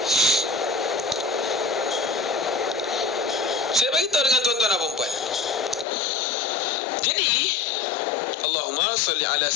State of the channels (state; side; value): drops out; right; at 5.9 s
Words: Saya bagi tahu dengan tuan-tuan dan puan-puan. Jadi Allahumma salli ala